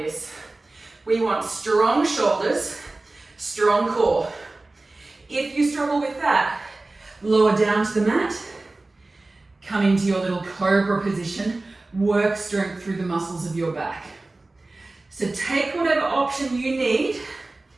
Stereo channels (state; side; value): quieter; left; 3.1 dB